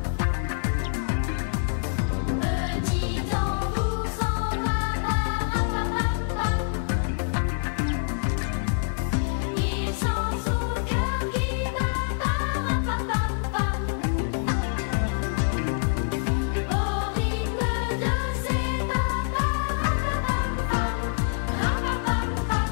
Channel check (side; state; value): right; silent; digital silence